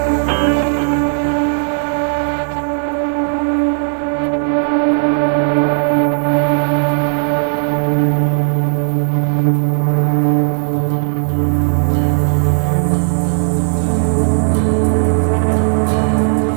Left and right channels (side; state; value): left; silent; digital silence